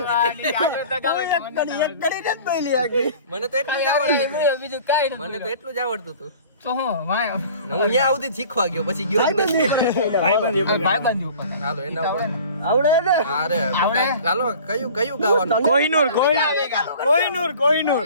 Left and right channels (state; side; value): inverted; both; correlation -0.45